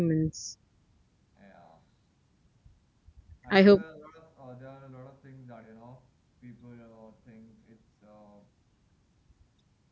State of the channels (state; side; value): identical; both; correlation 1.00